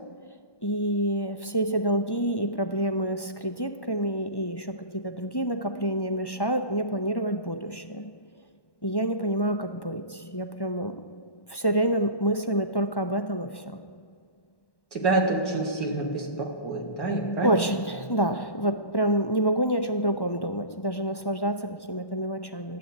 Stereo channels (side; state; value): right; late; 1.1 ms